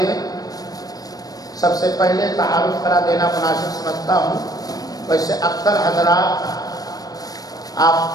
سب سے پہلے تعارف کرا دینا مناسب سمجھتا ہوں۔ ویسے اکثر حضرات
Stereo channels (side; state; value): right; late; 0.18 ms